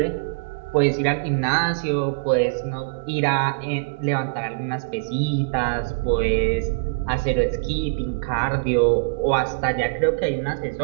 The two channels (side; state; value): left; quieter; 34.4 dB